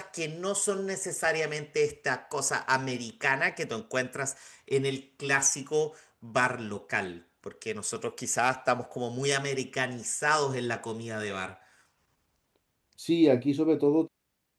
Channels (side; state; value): both; identical; correlation 1.00